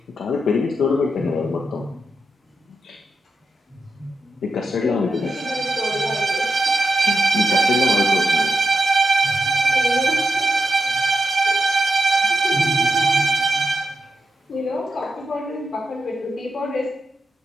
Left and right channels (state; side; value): normal; both; correlation 0.88